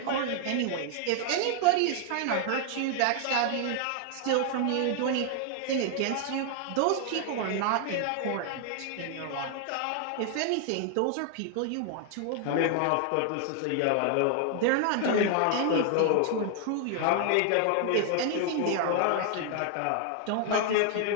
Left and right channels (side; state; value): both; different; correlation 0.00